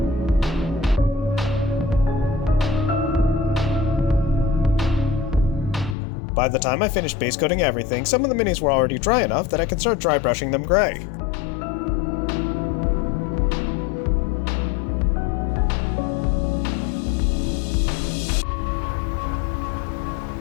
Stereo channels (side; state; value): right; drops out; at 6.0 s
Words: By the time I finished base coating everything, some of the minis were already dry enough that I could start dry brushing them gray.